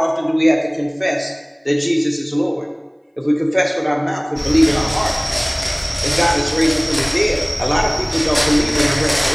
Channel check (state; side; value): identical; both; correlation 1.00